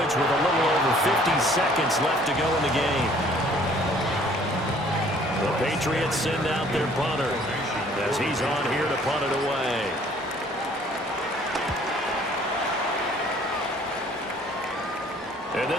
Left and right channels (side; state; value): both; normal; correlation 0.57